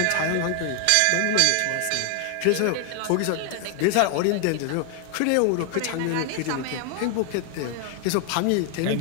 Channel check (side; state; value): both; different; correlation 0.00